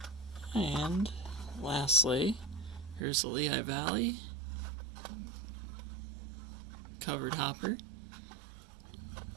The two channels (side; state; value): left; drops out; at 3.1 s